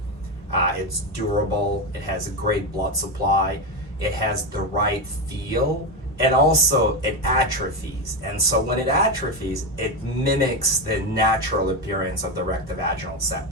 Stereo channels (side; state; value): both; normal; correlation 0.12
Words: it's durable, it has a great blood supply, it has the right feel, and also it atrophies. And so when it atrophies, it mimics the natural appearance of the rectovaginal